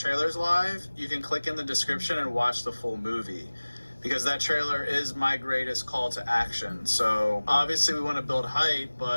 live, you can click in the description and watch the full movie. Because that trailer is my greatest call to action. So obviously we want to build hype,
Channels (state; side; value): inverted; both; correlation -1.00